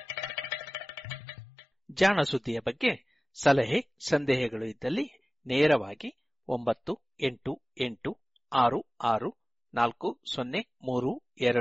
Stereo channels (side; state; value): both; normal; correlation 0.98